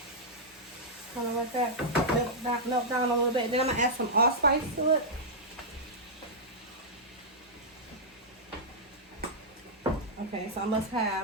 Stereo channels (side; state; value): both; normal; correlation -0.09